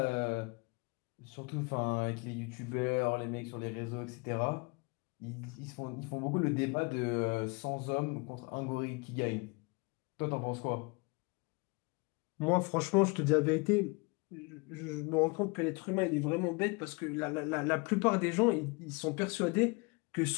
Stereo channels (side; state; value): right; quieter; 29.5 dB